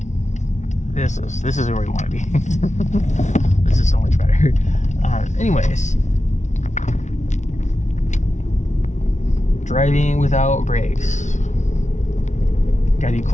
This is where we want to be. This is so much better. Anyways, driving without brakes. Got any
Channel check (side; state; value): right; late; 0.34 ms